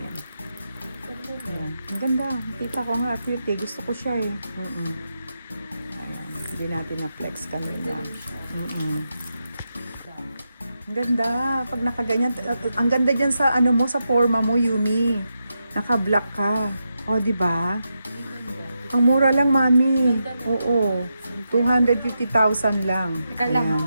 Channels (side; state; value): both; inverted; correlation -0.86